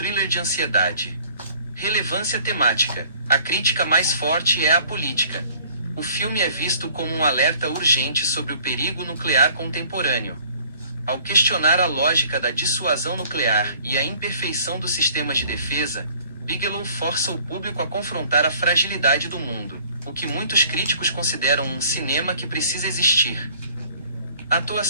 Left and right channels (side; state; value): both; inverted; correlation -0.54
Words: de ansiedade. Relevância temática. A crítica mais forte é a política. O filme é visto como um alerta urgente sobre o perigo nuclear contemporâneo. Ao questionar a lógica da dissuasão nuclear e a imperfeição dos sistemas de defesa, Bigelow força o público a confrontar a fragilidade do mundo, o que muitos críticos consideram um cinema que precisa existir.